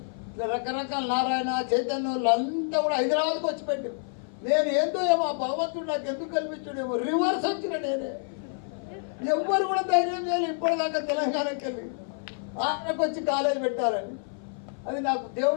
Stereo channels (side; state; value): right; silent; 55 dB below the other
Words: ఇట్లా రకరకాల నారాయణ, చైతన్య వాళ్ళంతా కూడా హైదరాబాద్కి వచ్చి పెట్టి, నేను ఏందో ఏమో భగవంతుడు నాకు ఎందుకు కల్పించాడేమో రివర్స్ వచ్చిన నేనే. ఎవ్వరు కూడా ధైర్యం చేయాలి ఇప్పటిదాకా తెలంగాణకి వెళ్ళి ఆంధ్రాకి వచ్చి కాలేజ్ పెట్టాలని. అది నాకు